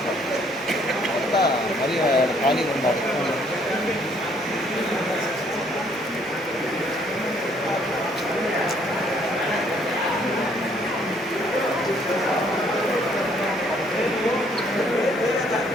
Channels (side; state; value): both; normal; correlation 0.65